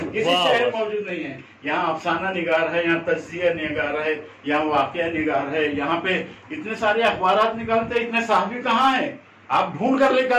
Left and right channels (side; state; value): both; identical; correlation 1.00